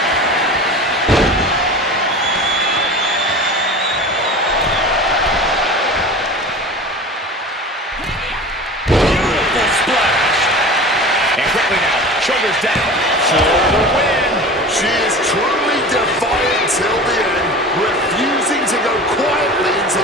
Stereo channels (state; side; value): normal; both; correlation 0.35